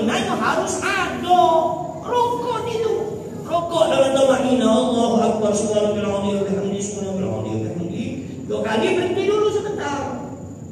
harus ada. Rukuk itu. Rukuk dalam tamakninah Allahu akbar subhanallah wa bihamdihi subhanallah wa bihamdihi. 2 kali berhenti dulu sebentar.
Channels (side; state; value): both; identical; correlation 1.00